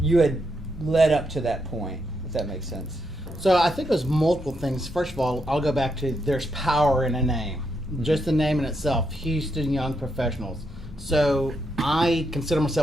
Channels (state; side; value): normal; both; correlation 0.81